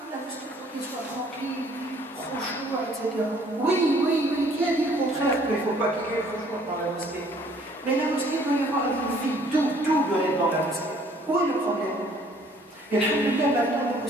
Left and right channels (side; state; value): both; normal; correlation 0.59